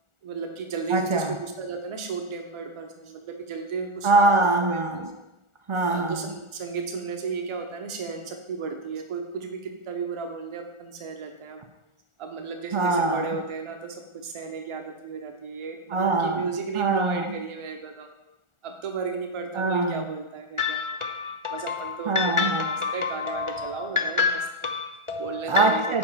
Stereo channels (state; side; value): late; left; 1.4 ms